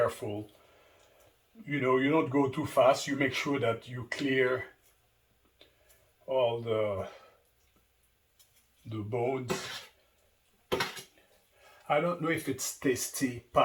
You know, you don't go too fast. You make sure that you clear all the bones. I don't know if it's tasty.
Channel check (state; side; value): identical; both; correlation 1.00